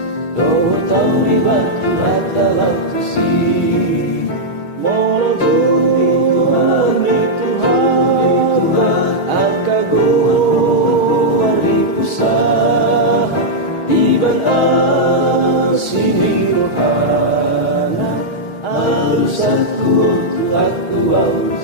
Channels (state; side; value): late; right; 6.4 ms